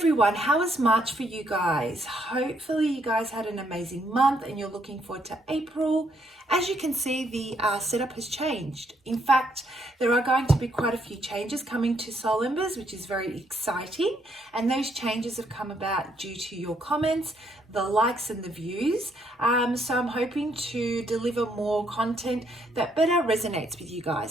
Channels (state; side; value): normal; both; correlation 0.72